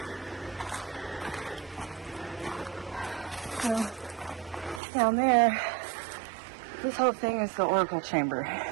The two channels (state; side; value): drops out; left; at 4.8 s